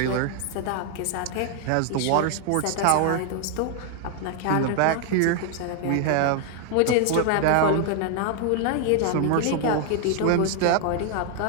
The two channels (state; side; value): different; both; correlation 0.00